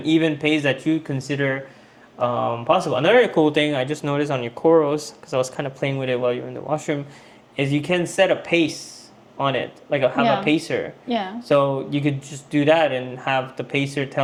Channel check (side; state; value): both; identical; correlation 1.00